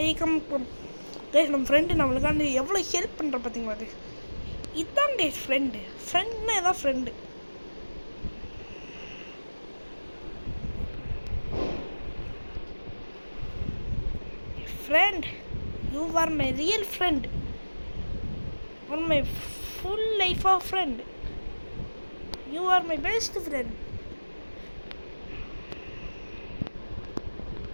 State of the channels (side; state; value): both; inverted; correlation -1.00